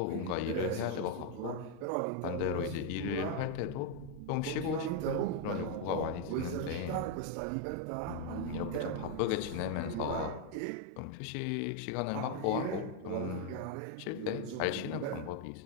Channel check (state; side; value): different; both; correlation 0.00